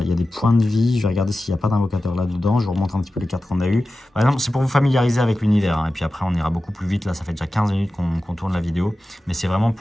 des points de vie. Je vais regarder s'il n'y a pas d'invocateur là-dedans. Je vous remontre un petit peu les cartes qu'on a eues. Par exemple, c'est pour vous familiariser avec l'univers. Hein. Et puis après, on ira beaucoup plus vite. Là, ça fait déjà 15 minutes qu'on tourne la vidéo. Mais c'est vraiment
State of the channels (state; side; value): normal; both; correlation 0.94